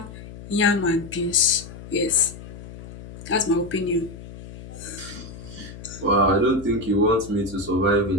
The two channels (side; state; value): left; noise; hum, 14 dB below the sound